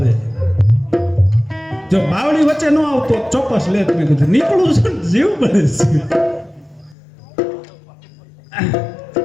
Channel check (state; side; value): drops out; right; at 7.0 s